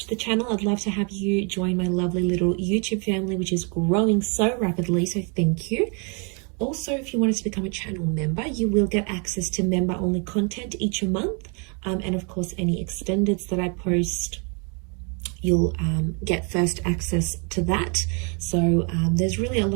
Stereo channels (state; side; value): quieter; left; 36.4 dB